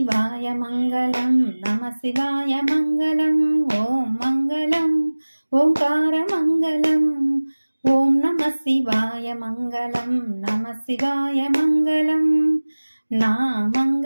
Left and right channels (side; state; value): both; inverted; correlation -1.00